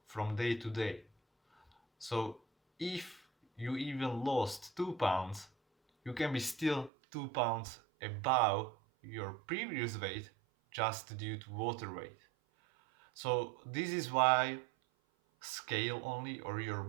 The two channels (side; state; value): left; drops out; at 6.9 s